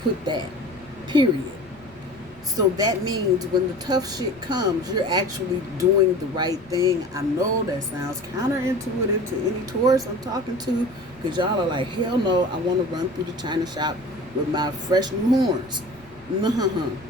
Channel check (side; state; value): right; noise; rumble, 25 dB below the sound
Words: put that. Period. So that means when the tough shit comes, you're actually doing the right thing. I know that sounds counterintuitive to any Taurus I'm talking to, because y'all are like, hell no, I want to run through the china shop with my fresh new horns. No,